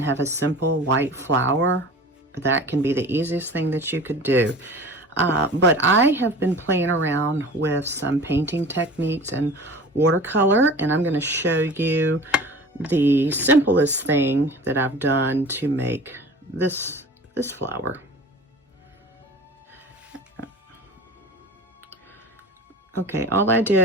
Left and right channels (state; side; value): normal; both; correlation 0.39